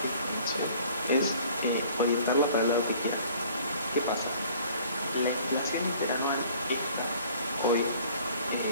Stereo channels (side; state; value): both; inverted; correlation -0.53